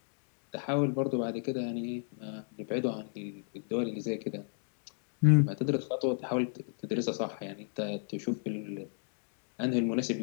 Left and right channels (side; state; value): right; silent; 55 dB below the other